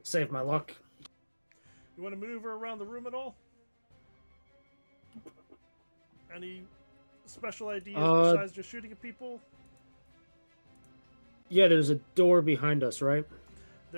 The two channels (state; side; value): inverted; both; correlation -1.00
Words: Save my luck. You want to maneuver around the room at all? Any special ideas besides just shooting at people? Yeah, there's a door behind us, right?